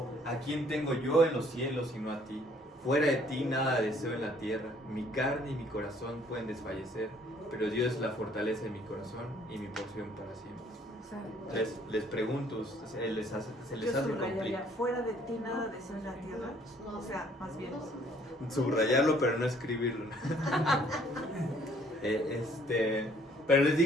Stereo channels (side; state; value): both; normal; correlation 0.61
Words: ¿a quién tengo yo en los cielos sino a ti? Fuera de ti nada deseo en la tierra, mi carne y mi corazón pueden desfallecer, pero Dios es la fortaleza de mi corazón y mi porción para siempre. O sea, Les pregunto, ¿se les hace yo complicado? subrayaría, fuera de ti nada deseo en la tierra. O sea, más bien. Subrayarlo, pero no escribirlo. Pero les